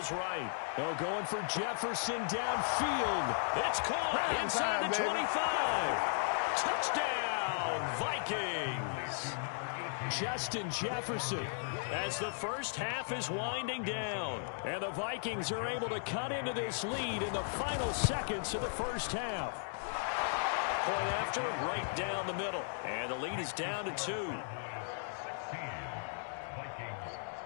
right. Oh, going for Jefferson downfield. It's caught inside the 25. Touchdown, Vikings. Justin Jefferson as the first half is winding down. And the Vikings are able to cut into this lead in the final seconds of the first half. Point after, right down the middle. And the lead is down to 2.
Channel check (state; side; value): silent; right; digital silence